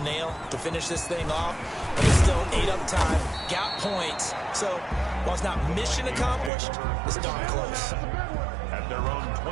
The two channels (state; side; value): drops out; left; at 6.5 s